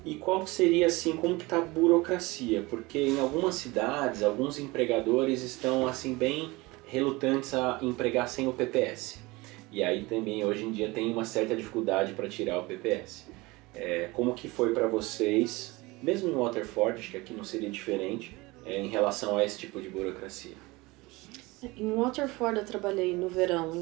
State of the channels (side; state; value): left; quieter; 22.6 dB